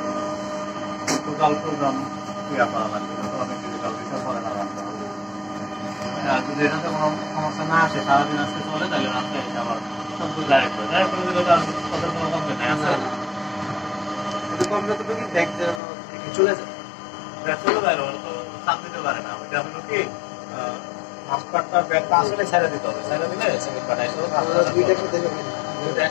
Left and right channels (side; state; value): right; drops out; at 15.8 s